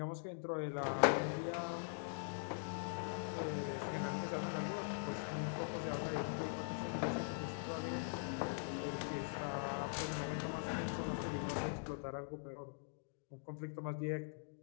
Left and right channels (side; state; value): right; silent; digital silence